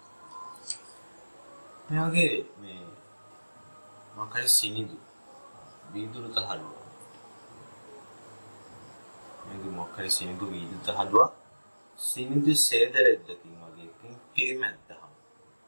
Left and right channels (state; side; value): inverted; both; correlation -1.00